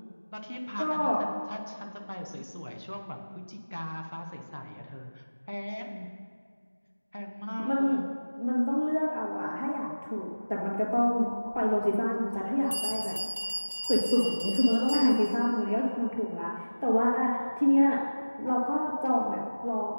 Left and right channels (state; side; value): inverted; both; correlation -1.00